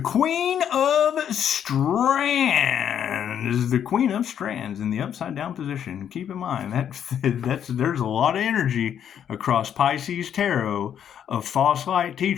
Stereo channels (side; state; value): right; quieter; 9.2 dB